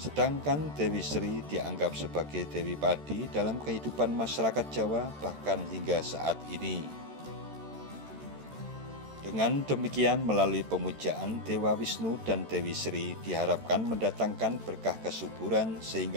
Dewi Sri dianggap sebagai Dewi Padi dalam kehidupan masyarakat Jawa bahkan hingga saat ini. Dengan demikian, melalui pemujaan Dewa Wisnu dan Dewi Sri diharapkan mendatangkan berkah kesuburan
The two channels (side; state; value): left; late; 13 ms